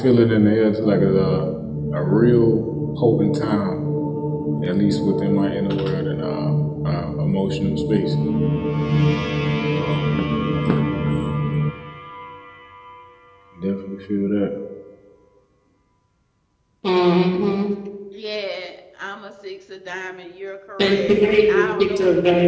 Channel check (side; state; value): both; identical; correlation 1.00